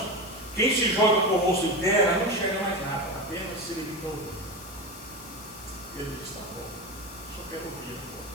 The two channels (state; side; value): noise; left; hiss, 15 dB below the sound